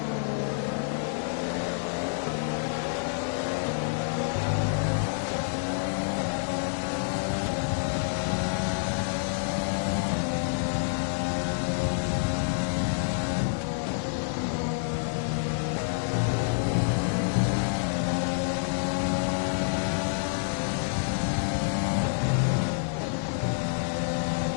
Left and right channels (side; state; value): right; silent; digital silence